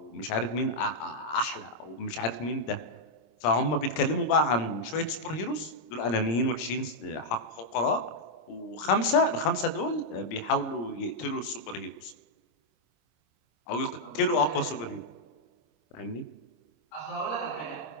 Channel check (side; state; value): right; late; 25 ms